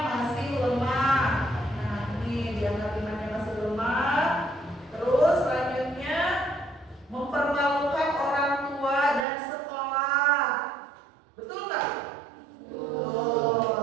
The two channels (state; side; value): drops out; left; at 9.2 s